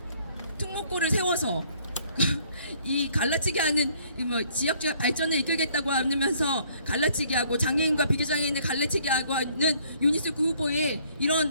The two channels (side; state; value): both; inverted; correlation -0.62